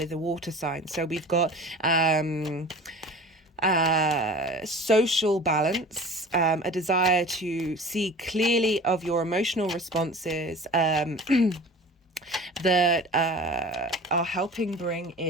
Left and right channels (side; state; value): both; normal; correlation 0.40